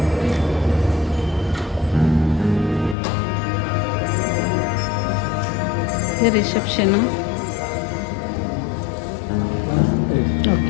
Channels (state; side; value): drops out; right; at 3.0 s